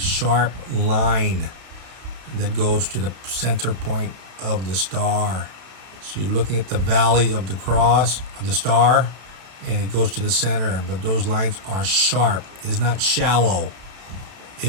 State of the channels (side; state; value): left; late; 31 ms